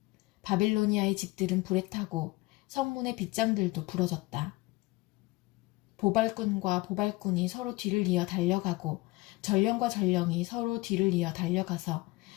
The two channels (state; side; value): quieter; right; 21.8 dB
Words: 바빌로니아의 집들은 불에 타고 성문의 빗장들도 부러졌다. 보발꾼과 보발꾼이 서로 뒤를 이어 달려가고 전령과 전령이 서로 뒤를 이어 달려가서